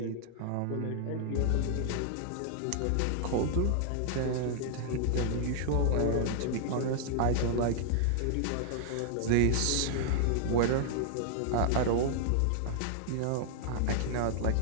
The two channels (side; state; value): both; different; correlation -0.01